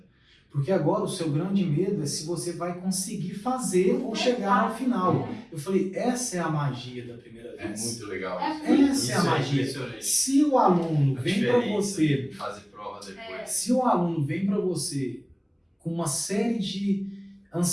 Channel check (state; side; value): identical; both; correlation 1.00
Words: Porque agora o seu grande medo é se você vai conseguir fazer ou chegar ao final. Eu falei, essa é a magia da primeira vez. É muito legal. Essa é a magia. Se o aluno vem para você, fazer prova depois. se o aluno vem para você com uma série de